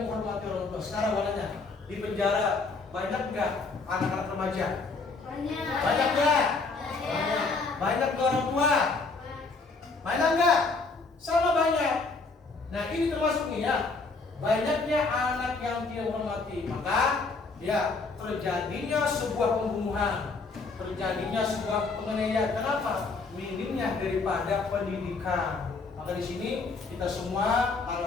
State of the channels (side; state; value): right; quieter; 4.0 dB